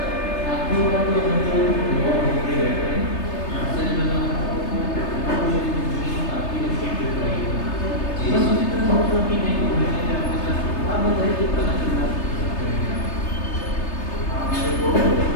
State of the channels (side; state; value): right; late; 3.3 ms